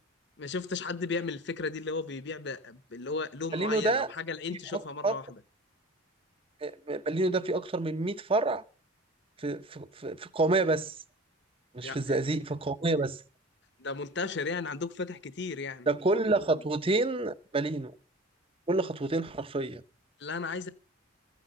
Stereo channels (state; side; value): normal; both; correlation 0.38